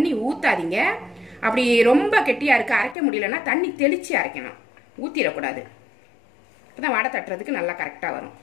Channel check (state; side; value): drops out; right; at 3.0 s